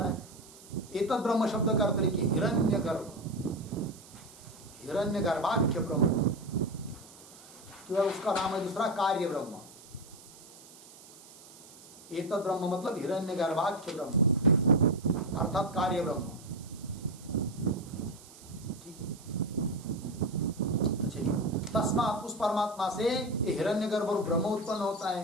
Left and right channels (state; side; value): noise; right; hiss, 20 dB below the sound